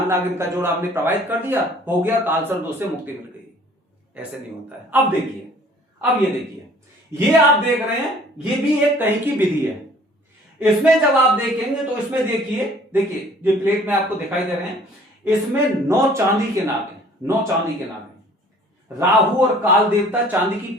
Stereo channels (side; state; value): both; normal; correlation 0.53